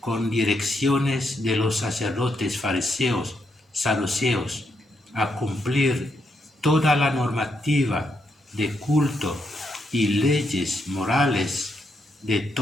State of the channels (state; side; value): normal; both; correlation 0.79